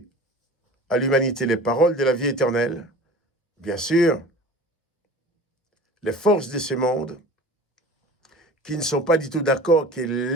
à l'humanité les paroles de la vie éternelle. Bien sûr, les forces de ce monde qui ne sont pas du tout d'accord que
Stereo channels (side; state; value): both; normal; correlation 0.40